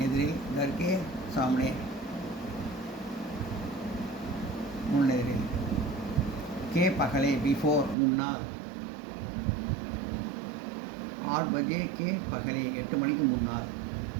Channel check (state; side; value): drops out; left; at 8.0 s